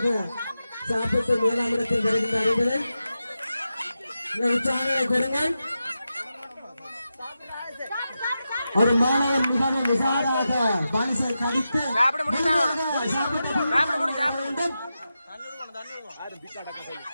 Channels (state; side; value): inverted; both; correlation -0.90